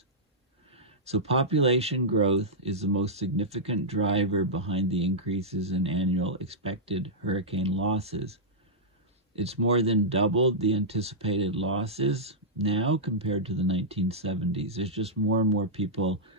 So population growth is the most significant driver behind the increases in annual expected hurricane losses. It's more than doubled the anticipated losses now compared to the 1970s. There's just more and more people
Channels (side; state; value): both; normal; correlation -0.11